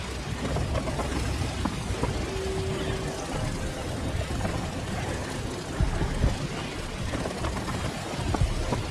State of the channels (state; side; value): identical; both; correlation 1.00